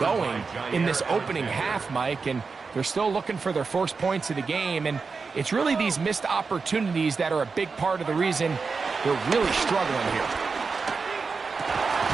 in this opening half, Mike, and they're still looking for their first points of the game, and it's really these missed opportunities that are a big part of the reason they're really struggling here.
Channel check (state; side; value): quieter; left; 4.8 dB